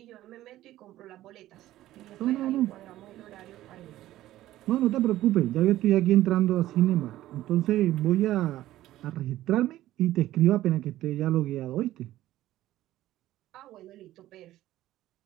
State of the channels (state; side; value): quieter; left; 14.7 dB